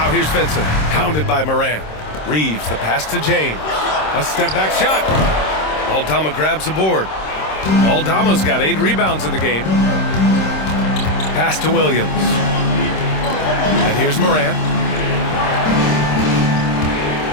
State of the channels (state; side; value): late; right; 26 ms